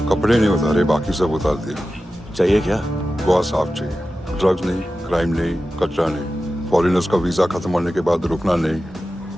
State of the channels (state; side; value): normal; both; correlation 0.93